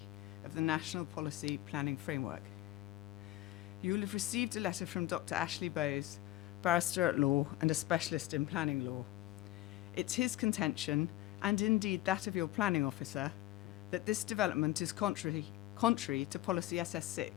of the National Policy Planning Framework. You will have received a letter from Dr. Ashley Bowes, barrister at law and a specialist in planning law. It's his contention, and indeed that of your planning officer, that this development is contrary to policy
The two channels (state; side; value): quieter; right; 16.0 dB